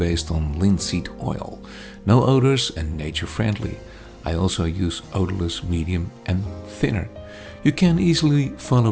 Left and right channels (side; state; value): both; identical; correlation 1.00